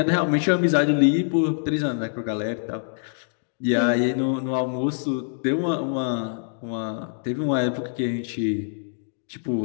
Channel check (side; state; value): right; silent; digital silence